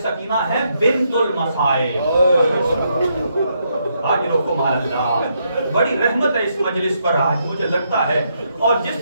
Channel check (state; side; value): inverted; both; correlation -0.77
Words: سکینہ ہے بنت المصائب. آج رکو مال اللہ، بڑی رحمت ہے اس مجلس پر آج مجھے لگتا ہے. اور